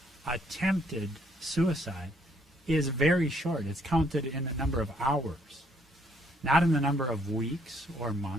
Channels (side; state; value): both; normal; correlation 0.68